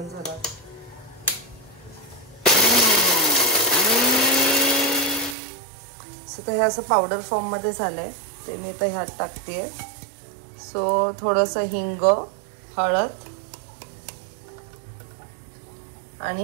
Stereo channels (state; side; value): drops out; left; at 5.4 s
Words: झालं. सो तर हे असं पावडर फॉर्म मध्ये झालंय ते मी आता ह्यात टाकतेय. सो थोडंसं हिंग, हळद